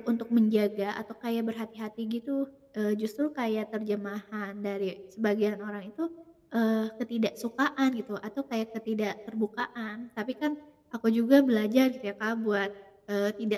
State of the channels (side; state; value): both; identical; correlation 1.00